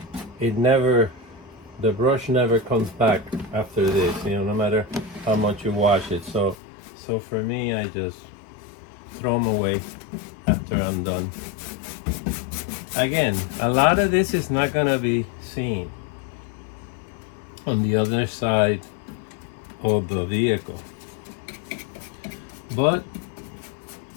the brush never comes back after this, you know, no matter how much you wash it. So for me, I just throw them away after I'm done. Again, a lot of this is not gonna be seen on the other side of the vehicle, but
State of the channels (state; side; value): drops out; right; at 6.6 s